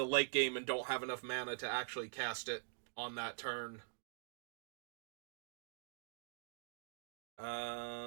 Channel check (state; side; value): silent; left; digital silence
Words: late game and don't have enough mana to actually cast it on that turn.